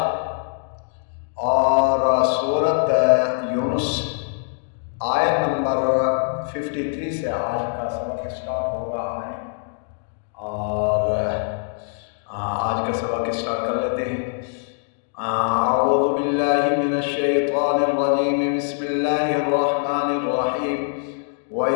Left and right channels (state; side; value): silent; right; digital silence